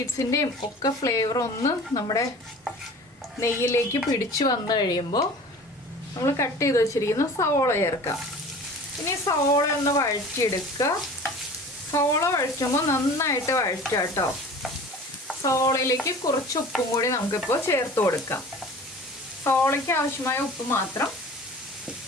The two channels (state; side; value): normal; both; correlation 0.42